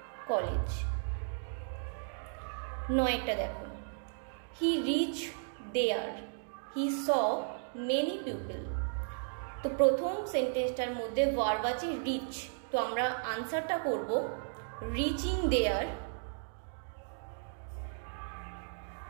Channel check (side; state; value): left; silent; digital silence